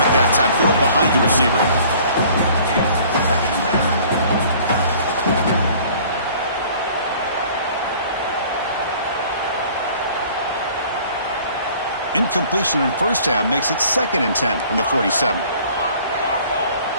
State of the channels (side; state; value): both; inverted; correlation -0.52